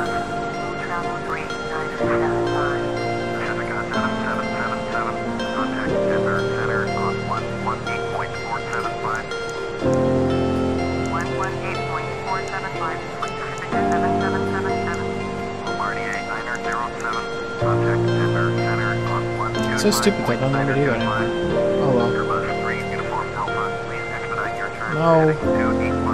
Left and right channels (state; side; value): identical; both; correlation 1.00